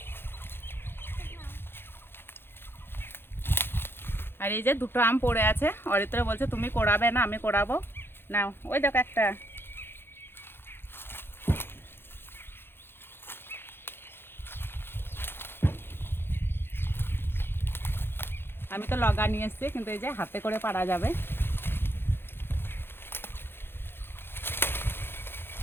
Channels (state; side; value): late; right; 0.11 ms